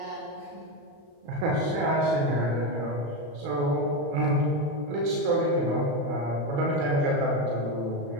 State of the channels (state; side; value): late; left; 35 ms